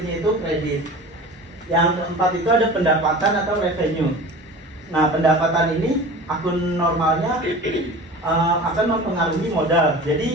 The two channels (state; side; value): normal; both; correlation 0.37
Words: itu kredit. Yang keempat itu ada pendapatan atau revenue. Nah, pendapatan ini akun normalnya akan mempengaruhi modal.